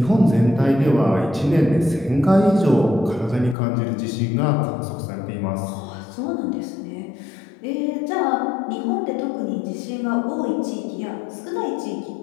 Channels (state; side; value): drops out; right; at 3.6 s